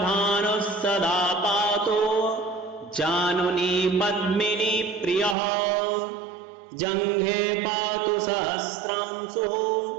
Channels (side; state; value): left; drops out; at 5.4 s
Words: सदा पातु जानुनी पद्मिनी प्रियः जङ्घे पातु सहस्रांशुः